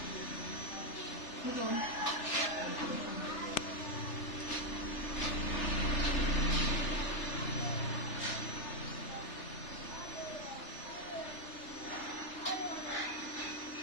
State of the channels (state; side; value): late; right; 3.3 ms